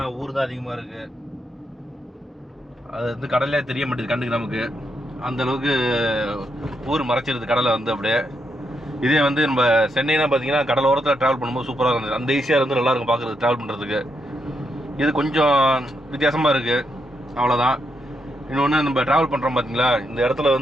ஊர் தான் அதிகமாக இருக்குது. அது வந்து கடலே தெரிய மாட்டேது கண்ணுக்கு நமக்கு, அந்தளவுக்கு ஊர் மறைச்சிருது கடலை வந்து அப்படியே. இதே வந்து நம்ம சென்னைனா பார்த்தீங்கன்னா கடல் ஓரத்தில் ட்ராவல் பண்ணும்போது சூப்பராக இருந்தது. அந்த ஈஸியாக வந்து நல்லாயிருக்கும் பார்க்குறது, ட்ராவல் பண்ணுறதுக்கு. இது கொஞ்சம் வித்தியாசமாக இருக்குது, அவ்வளோதான். இன்னொன்று நம்ம ட்ராவல் பண்ணுறோம் பார்த்தீங்களா, இந்த இடத்துல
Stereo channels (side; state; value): both; normal; correlation 0.80